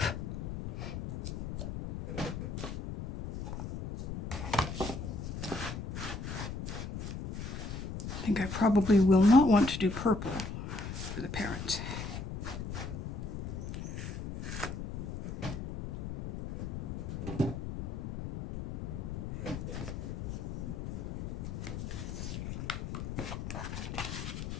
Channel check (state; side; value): noise; left; rumble, 6 dB below the sound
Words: think I probably will not want to do purple for the parents.